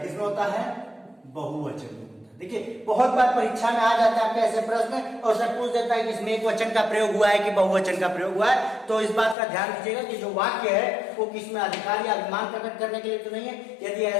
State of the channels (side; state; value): right; drops out; at 9.3 s